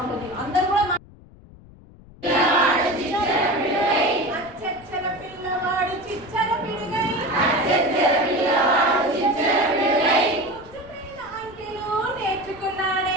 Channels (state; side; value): noise; left; rumble, 22 dB below the sound